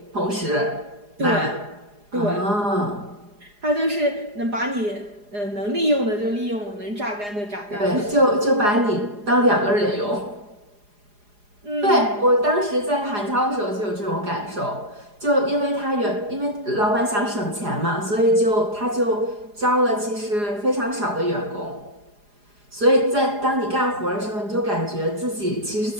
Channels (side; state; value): left; late; 4.9 ms